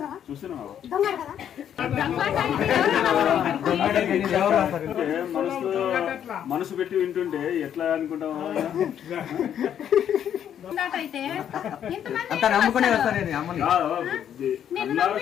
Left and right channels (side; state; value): right; quieter; 9.5 dB